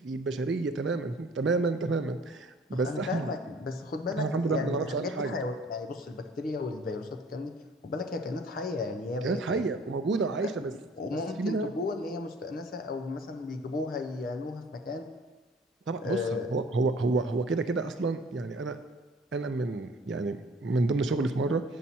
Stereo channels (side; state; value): both; normal; correlation 0.52